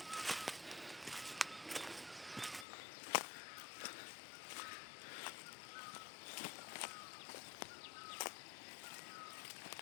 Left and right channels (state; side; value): drops out; right; at 2.7 s